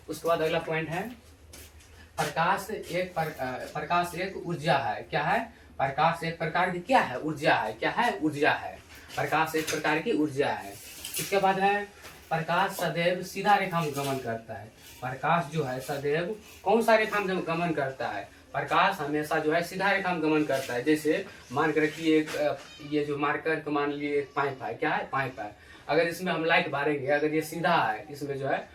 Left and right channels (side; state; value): both; identical; correlation 1.00